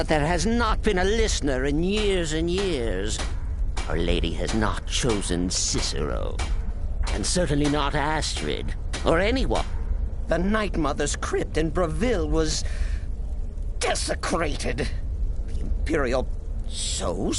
there has not been a listener in years and years. Our Lady has not chosen Cicero, and certainly not Astrid, or anyone. The Night Mother's crypt in Breville was... desecrated. The Imperial... So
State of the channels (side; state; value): both; identical; correlation 1.00